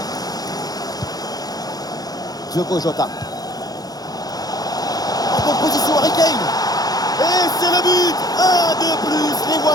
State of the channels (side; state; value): right; late; 0.19 ms